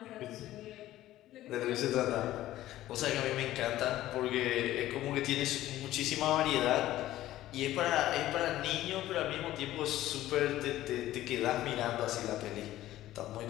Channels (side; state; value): right; quieter; 14.6 dB